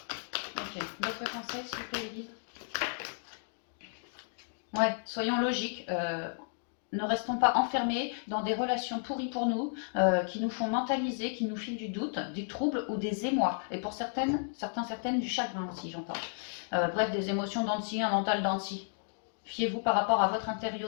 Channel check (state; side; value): silent; right; digital silence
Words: Ok, d'autres conseils s'il vous plaît, Edith? Ouais, soyons logiques. Ne restons pas enfermés dans des relations pourries pour nous, qui nous font mentaliser, qui nous filent du doute, des troubles ou des émois. Et pour certaines du chagrin aussi, j'entends. Bref, des émotions dents de scie, un mental dents de scie. Fiez-vous par rapport à votre